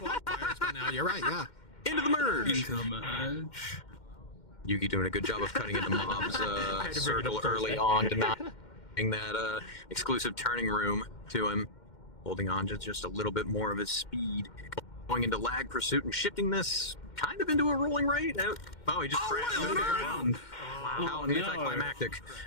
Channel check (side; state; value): right; late; 2.1 ms